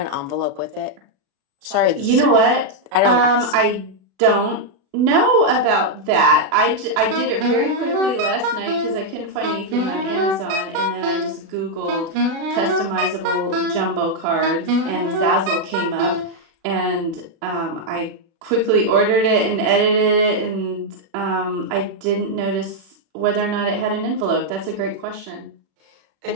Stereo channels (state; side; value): late; left; 36 ms